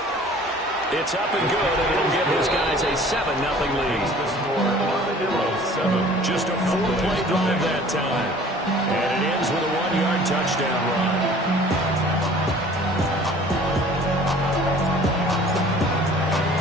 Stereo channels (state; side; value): normal; both; correlation 0.49